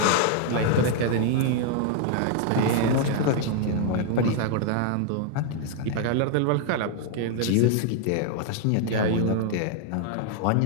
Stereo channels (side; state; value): both; different; correlation 0.00